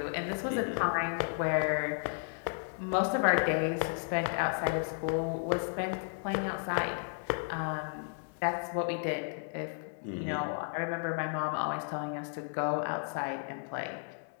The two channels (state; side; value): silent; right; 55 dB below the other